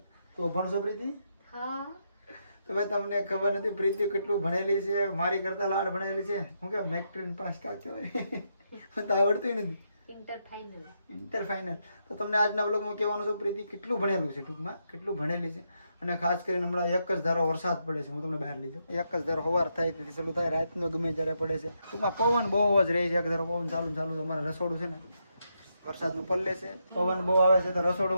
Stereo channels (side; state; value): both; inverted; correlation -0.81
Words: તો અભણ છો પ્રીતિ? હા. તો ભાઈ તમને ખબર નથી પ્રીતિ કેટલું ભણેલી છે, મારી કરતા લાડ ભણેલી છે. હું કે મેટ્રિક પાસ કાચો હોય મને તો આવડતું નથી. Inter final. તો તમને આજના વ્લોગમાં કહેવાનું છે પ્રીતિ કેટલું ભણેલું છે, ટૂંકમાં કેટલું ભણેલી છે. અને ખાસ કરીને હમણાં એક જ ધારો વરસાદ પડે છે. હું તમને બહાર લઈ જાઉં. એક જ ધારો સવાર થાય તેથી ચાલુ થાય, રાતનો ગમે ત્યારે પડે છે. ટૂંકમાં પવન બહુ જ રહે છે. એક ધારો પવન ચાલુ છે. અમારે રસોડું છે ને વરસાદનું પલ્લે છે, પવન બહુ આવે છે. તો રસોડું